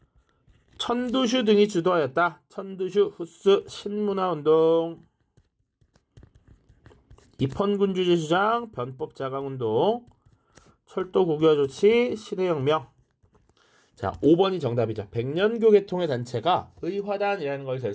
천두슈 등이 주도하였다. 천두슈, 후스, 신문화운동, 입헌군주제 주장, 변법자강운동, 철도 국유화 조치, 시대혁명. 자, 5번이 정답이죠. 백년교 계통의 단체가 의화단이라는 걸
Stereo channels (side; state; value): both; identical; correlation 1.00